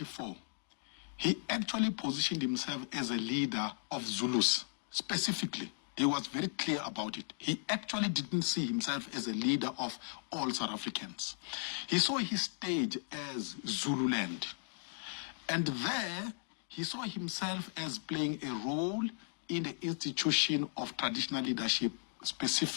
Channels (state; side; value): silent; right; digital silence